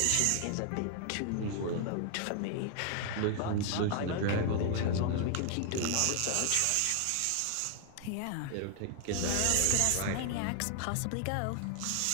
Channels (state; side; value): different; both; correlation 0.00